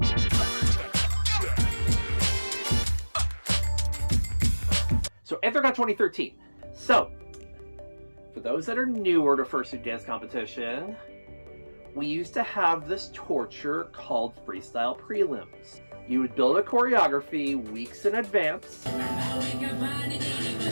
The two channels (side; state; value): both; inverted; correlation -1.00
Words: So, Anthrocon 2013. So, for those that are newer to Fursuit dance competition, we used to have this torture called freestyle prelims. You would build a choreography weeks in advance,